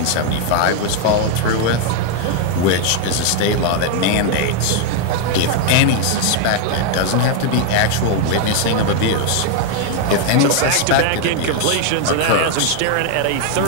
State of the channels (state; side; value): different; both; correlation 0.00